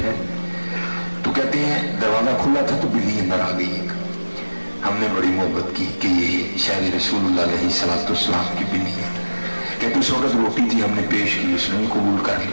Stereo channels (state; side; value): inverted; both; correlation -1.00